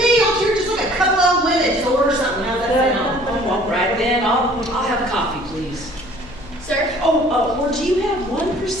don't you just like a couple old women. Just order something. How's that sound? Oh, all right then. I'll have coffee, please. Sir? Oh, or do you have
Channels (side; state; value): left; noise; hum, 19 dB below the sound